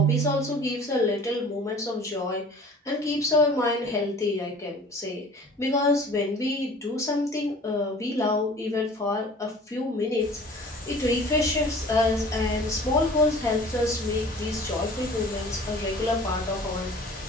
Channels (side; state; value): both; normal; correlation 0.46